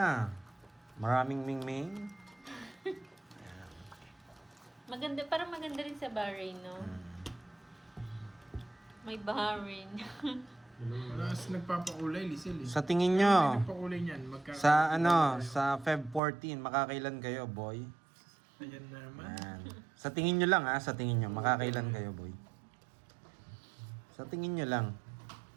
Maraming ming-ming? Maganda, parang maganda rin sa Bahrain, no? May Bahrain. Alas nagpapakulay, Lisel eh. Sa tingin nyo, Nagpakulay niyan. sa ano, sa Feb 14, makakailan kayo, boy? Ayan na naman. Yan. Sa tingin nyo lang ha, sa tingin nyo, makakailan kayo, boy? Sa tingin nyo lang.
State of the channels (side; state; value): left; drops out; at 16.2 s